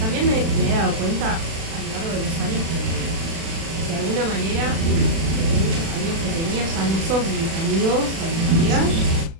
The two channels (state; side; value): late; left; 36 ms